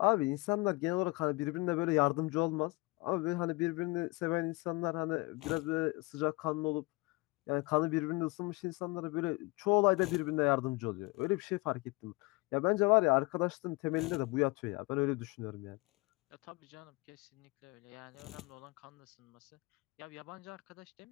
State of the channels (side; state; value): right; quieter; 25.0 dB